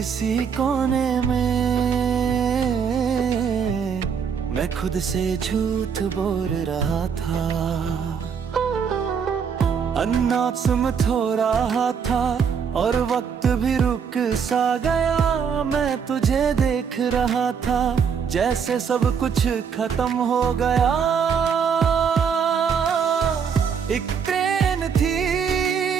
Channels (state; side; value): quieter; left; 6.8 dB